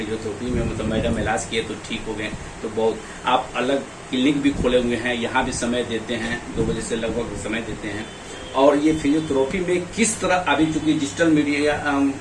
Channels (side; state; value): both; identical; correlation 1.00